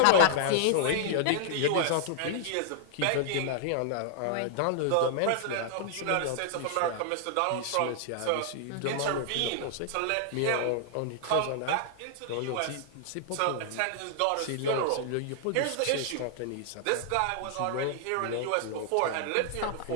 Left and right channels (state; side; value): different; both; correlation -0.01